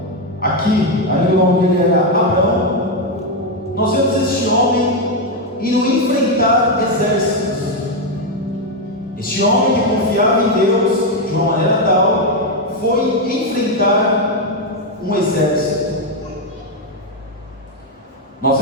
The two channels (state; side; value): normal; both; correlation 0.05